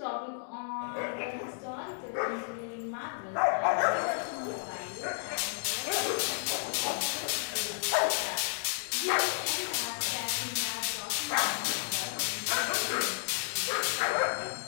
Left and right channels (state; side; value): silent; right; digital silence